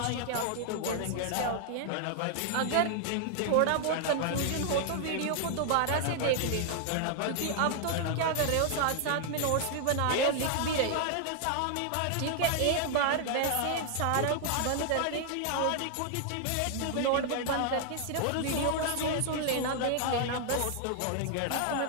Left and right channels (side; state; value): both; different; correlation 0.00